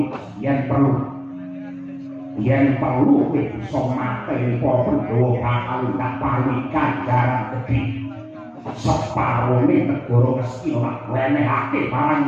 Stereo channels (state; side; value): identical; both; correlation 1.00